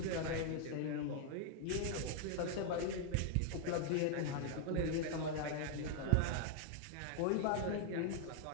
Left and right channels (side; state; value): both; different; correlation 0.00